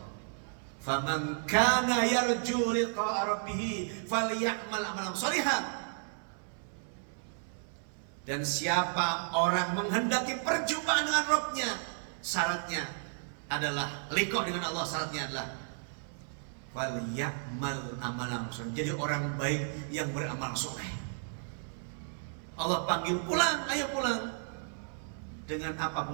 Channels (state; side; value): silent; left; 56 dB below the other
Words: Faman kana yarju liqa'a rabbih falyamal amalan shalihan. Dan siapa orang menghendaki perjumpaan dengan Rabbnya, syaratnya adalah liqa dengan Allah, syaratnya adalah falyamal amalan shalihan, jadi orang baik yang beramal soleh. Allah panggil, pulang, ayo pulang. Dengan apa